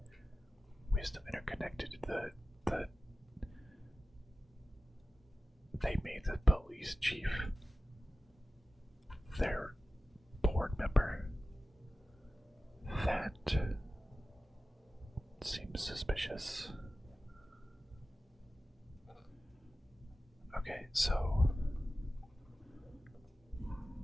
Wisdom Interconnected, they made the police chief their board member. That seems suspicious. Okay, so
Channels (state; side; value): normal; both; correlation 0.95